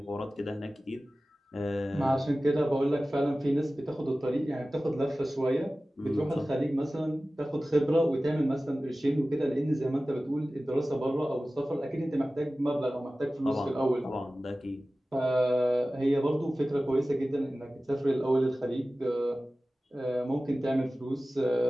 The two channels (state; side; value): normal; both; correlation 0.96